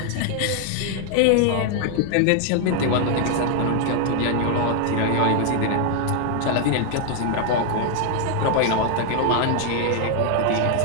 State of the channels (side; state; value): both; different; correlation 0.00